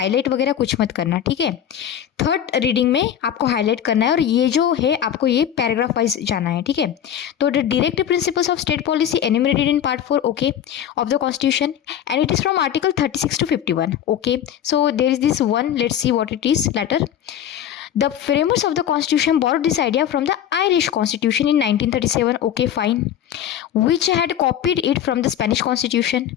वगैरह कुछ मत करना। ठीक है, थर्ड रीडिंग में आपको हाईलाइट करना है और ये जो है आपको ये पैराग्राफ वाइज जाना है। ठीक है, तो the directive principles of state policy enumerated in part 4 okay of the constitution and it is from article 36 to 51। Okay, so there is this one, let's see what it is later. The framers of the constitution borrowed this idea from the Irish constitution in 1937. Okay, fine. Which had copied it from the Spanish constitution.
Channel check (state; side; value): quieter; right; 10.0 dB